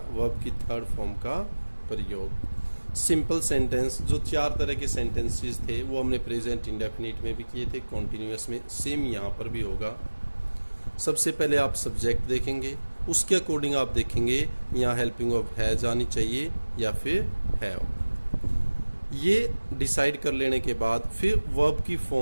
की थर्ड फॉर्म का प्रयोग। सिंपल सेंटेंस, जो 4 तरह के सेंटेंसेस थे वो हमने प्रेजेंट इंडेफिनिट में भी किए थे, कॉन्टिन्यूअस में, सेम यहाँ पर भी होगा। सबसे पहले आप सब्जेक्ट देखेंगे, उसके अकॉर्डिंग आप देखेंगे यहाँ हेल्पिंग वर्ब हैज आनी चाहिए या फिर हैव। ये डिसाइड कर लेने के बाद फिर वर्ब की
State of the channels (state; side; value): inverted; both; correlation -1.00